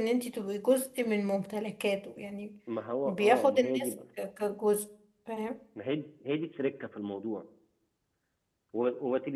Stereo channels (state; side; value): identical; both; correlation 1.00